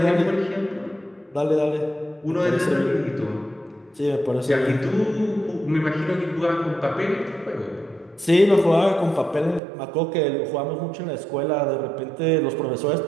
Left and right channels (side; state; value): left; drops out; at 9.6 s